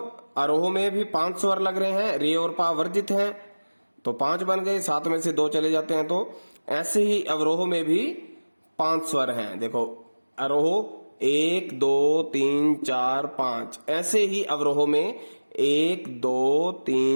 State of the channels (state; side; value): inverted; both; correlation -1.00